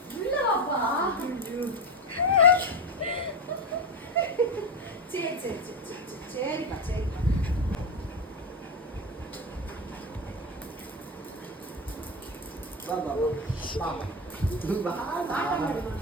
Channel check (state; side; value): normal; both; correlation 0.17